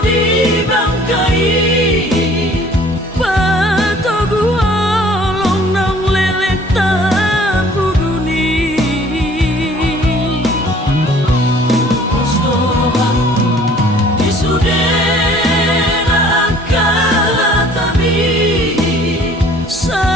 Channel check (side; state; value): both; normal; correlation 0.54